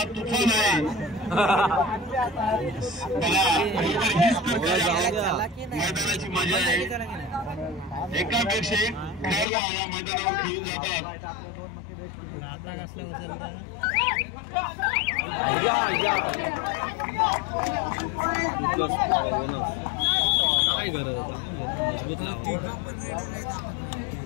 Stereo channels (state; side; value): drops out; right; at 9.5 s